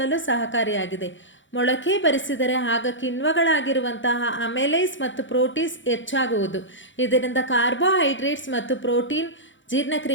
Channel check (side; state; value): right; late; 0.55 ms